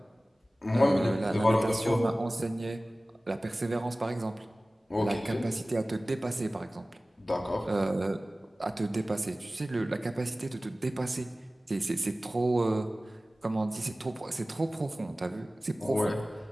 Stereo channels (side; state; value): both; normal; correlation 0.97